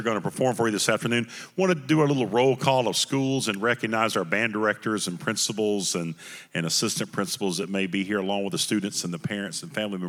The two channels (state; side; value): identical; both; correlation 1.00